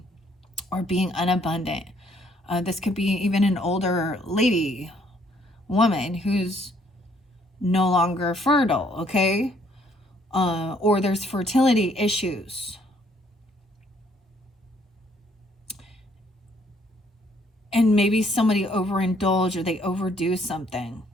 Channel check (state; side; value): normal; both; correlation 0.66